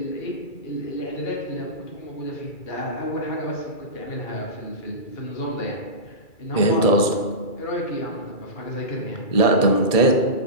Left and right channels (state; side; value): late; right; 2.3 ms